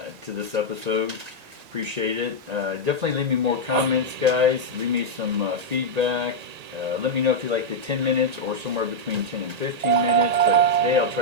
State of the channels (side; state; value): left; late; 1.8 ms